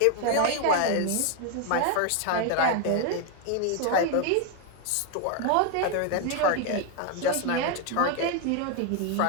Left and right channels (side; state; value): both; different; correlation 0.01